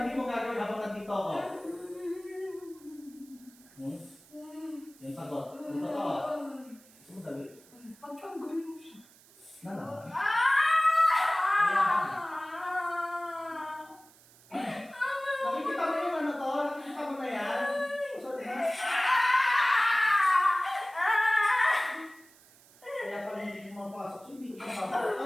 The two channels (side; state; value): right; noise; hiss, 26 dB below the sound